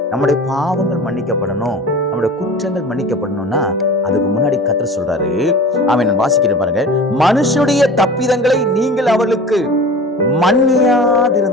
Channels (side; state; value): both; normal; correlation 0.37